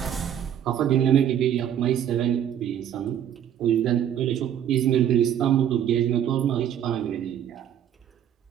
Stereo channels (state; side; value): quieter; left; 9.9 dB